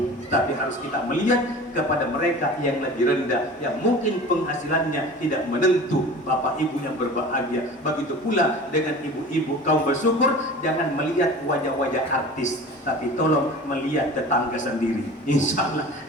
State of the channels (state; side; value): normal; both; correlation 0.38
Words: tapi harus kita melihat kepada mereka yang lebih rendah, yang mungkin penghasilannya tidak menentu. Bapak ibu yang berbahagia, begitu pula dengan ibu-ibu kaum bersyukur, jangan melihat wajah-wajah artis, tapi tolong melihat tetangga sendiri. Insya Allah